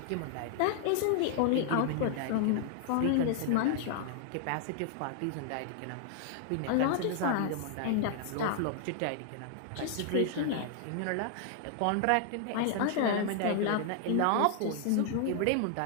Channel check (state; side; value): different; both; correlation 0.00